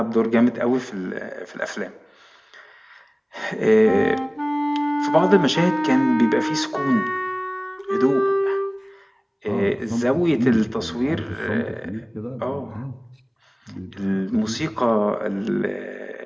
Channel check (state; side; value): identical; both; correlation 1.00